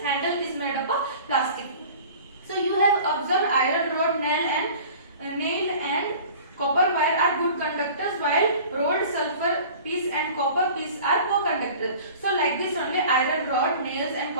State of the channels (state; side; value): inverted; both; correlation -0.43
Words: handle is made up of plastic. So you have observed iron rod, nail and copper wire are good conductors, while rod, sulfur piece and copper piece are poor conductors. So like this only, iron rod, nails and